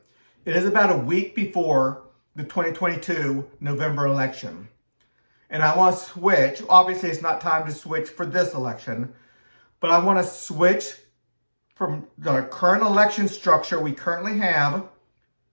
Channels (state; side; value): inverted; both; correlation -1.00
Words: It is about a week before the 2022 November election. And I want to switch. Obviously, it's not time to switch for this election, but I want to switch from the current election structure we currently have